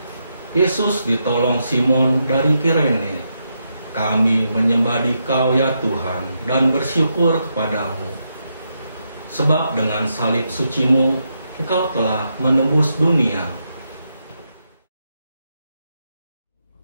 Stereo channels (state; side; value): inverted; both; correlation -0.83